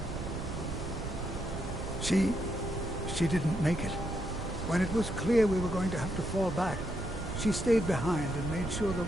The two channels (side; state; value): right; noise; rumble, 7 dB below the sound